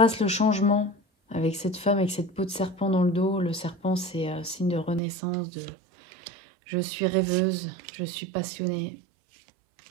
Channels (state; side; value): drops out; left; at 5.0 s